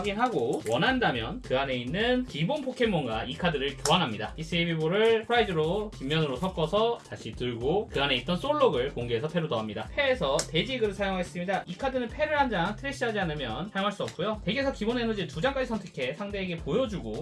원한다면 그 안에 있는 기본 포켓몬과 이 카드를 교환합니다. 히스이 헤비볼을 프라이즈로 뒷면으로 섞어서 다시 들고 그 안에 있던 솔록을 공개해서 패로 더합니다. 패에서 돼지그를 사용하겠습니다. 이 카드는 패를 한 장 트래시하지 않으면 사용할 수 없고요. 덱에서 기본 에너지 2장까지 선택해 상대에게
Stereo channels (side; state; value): both; identical; correlation 1.00